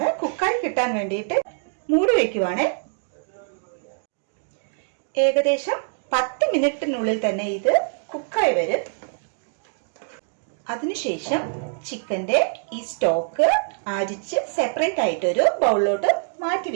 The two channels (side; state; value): left; silent; digital silence